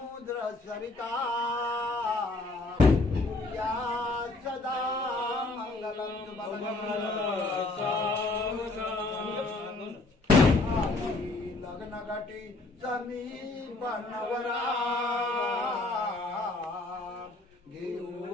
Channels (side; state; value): right; quieter; 3.1 dB